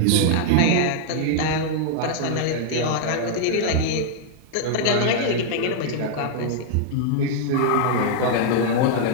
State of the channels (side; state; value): both; different; correlation -0.01